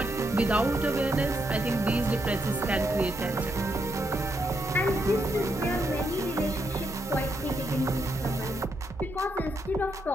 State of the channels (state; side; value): normal; both; correlation 0.79